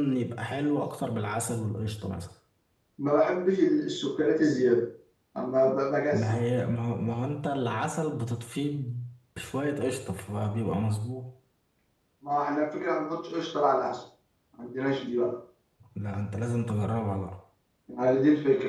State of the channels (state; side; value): identical; both; correlation 1.00